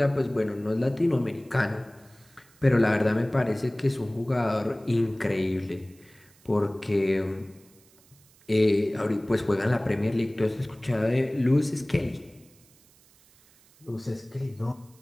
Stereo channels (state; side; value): noise; right; hiss, 29 dB below the sound